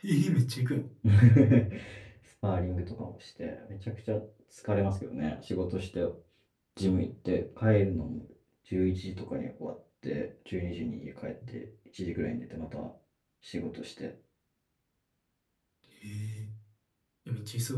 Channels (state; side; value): identical; both; correlation 1.00